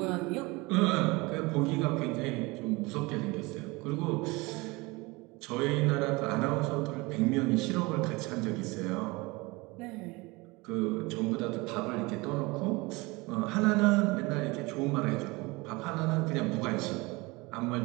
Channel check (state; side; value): quieter; left; 24.2 dB